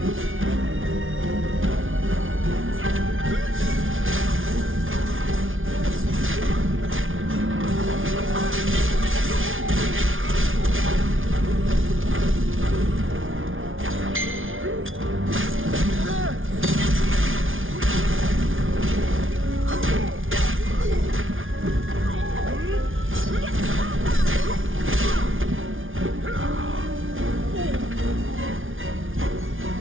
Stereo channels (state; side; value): late; left; 0.58 ms